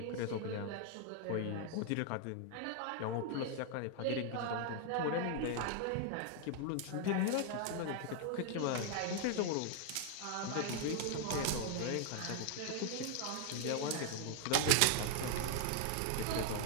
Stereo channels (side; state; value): both; different; correlation 0.00